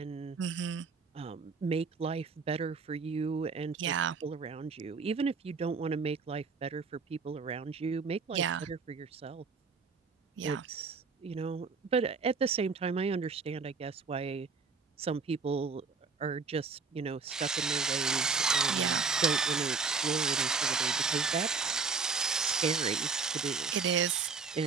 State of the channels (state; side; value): quieter; left; 4.9 dB